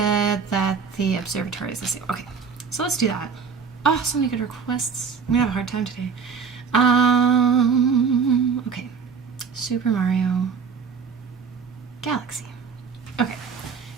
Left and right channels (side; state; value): left; quieter; 6.0 dB